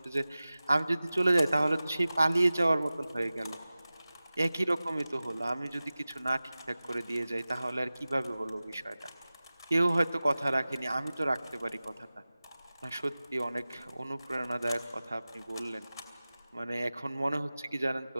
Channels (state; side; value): inverted; both; correlation -0.97